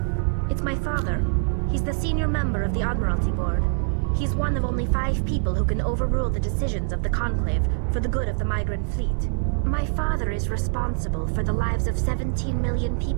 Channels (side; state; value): left; silent; digital silence